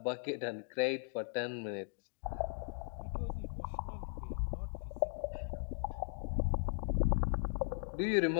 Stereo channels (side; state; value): right; silent; digital silence